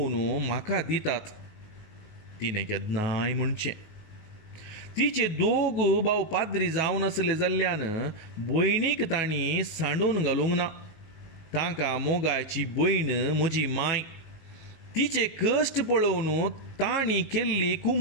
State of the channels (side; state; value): right; late; 19 ms